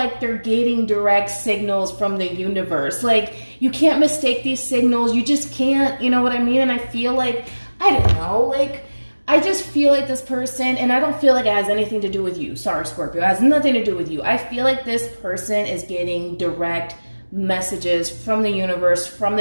they're getting direct signals from the universe. Like, you can't mistake these signals. You just can't, you know what I mean? And I feel like, I don't know, like, I just feel like this person, and I don't feel like it has anything to do with you. Sorry, Scorpio. It has nothing to do with you. I feel like this person is getting direct messages from the universe, from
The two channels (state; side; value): inverted; both; correlation -1.00